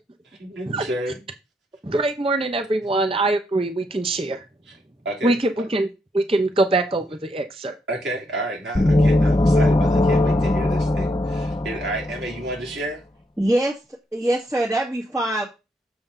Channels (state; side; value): normal; both; correlation 0.77